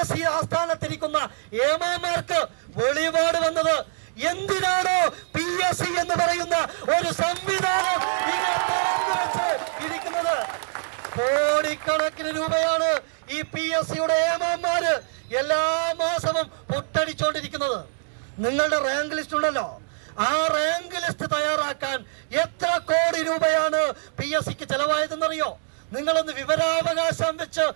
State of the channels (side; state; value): left; silent; digital silence